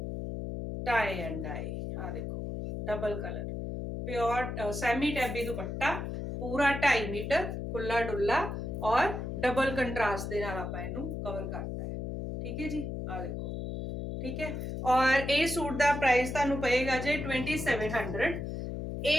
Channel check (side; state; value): left; noise; hum, 5 dB below the sound